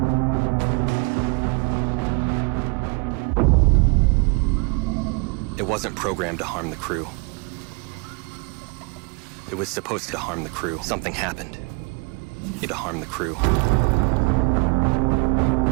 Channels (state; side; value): quieter; left; 31.7 dB